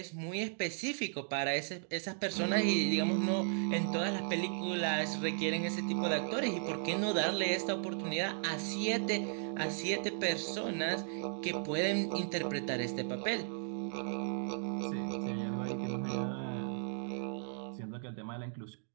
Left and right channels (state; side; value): silent; left; digital silence